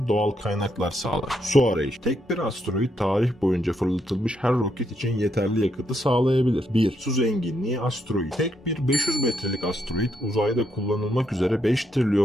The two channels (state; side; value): normal; both; correlation 0.78